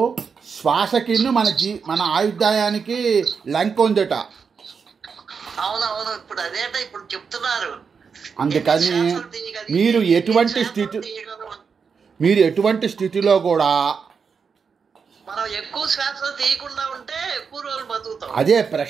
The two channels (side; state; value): left; quieter; 5.9 dB